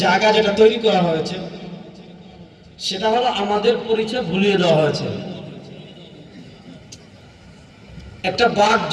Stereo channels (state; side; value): identical; both; correlation 1.00